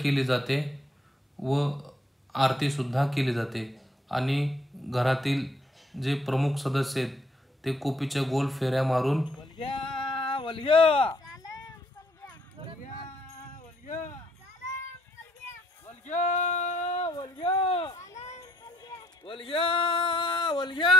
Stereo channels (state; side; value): normal; both; correlation 0.68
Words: जाते व आरती सुद्धा केली जाते, आणि घरातील जे प्रमुख सदस्य आहेत ते कोपीच्या गोल फेऱ्या मारून